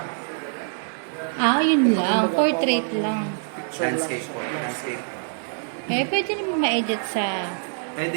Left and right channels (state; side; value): silent; left; 62 dB below the other